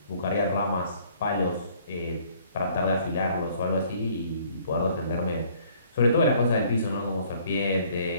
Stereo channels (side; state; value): both; inverted; correlation -0.59